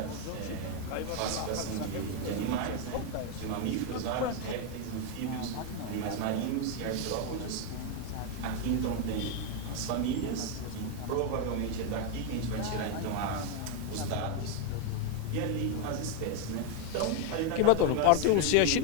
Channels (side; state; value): both; different; correlation 0.01